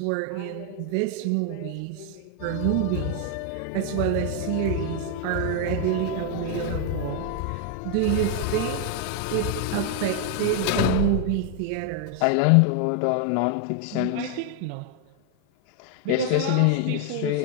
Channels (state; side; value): different; both; correlation 0.00